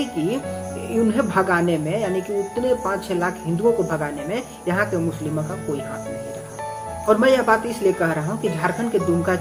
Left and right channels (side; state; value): both; identical; correlation 1.00